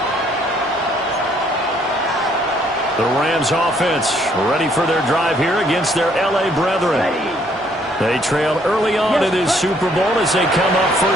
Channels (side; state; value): both; normal; correlation 0.66